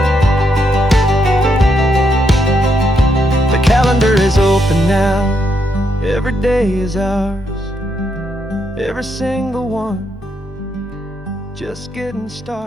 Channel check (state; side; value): normal; both; correlation 0.79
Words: Calendar is open now, every day is ours, every single one, just getting